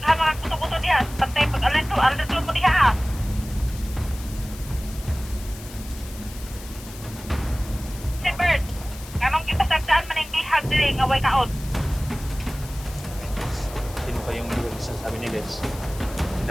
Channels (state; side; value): noise; left; hiss, 16 dB below the sound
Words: mga kuto-kuto diha, pantay pag alerto mo diha. Si Bert, kanong kita sagdaan man yung bihag diri nga way kaon. Sino pa yung bihag sa sabi ni guys?